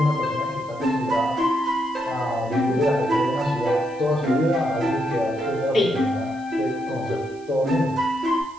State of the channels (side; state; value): right; noise; hiss, 27 dB below the sound